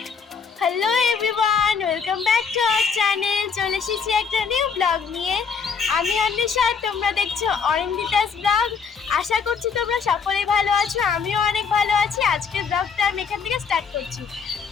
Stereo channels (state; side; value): quieter; right; 6.0 dB